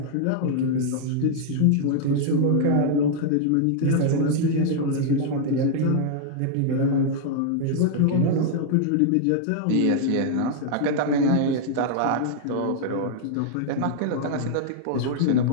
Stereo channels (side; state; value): both; different; correlation 0.00